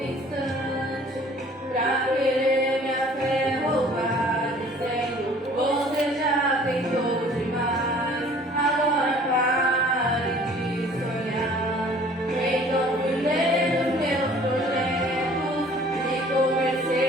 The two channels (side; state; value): both; normal; correlation 0.52